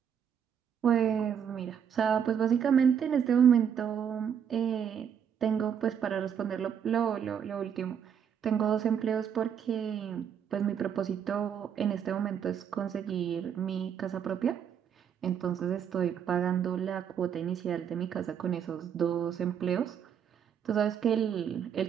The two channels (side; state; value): left; quieter; 8.1 dB